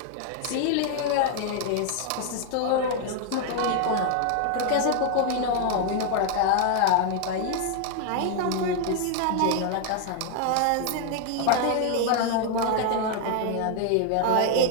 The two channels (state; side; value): different; both; correlation 0.00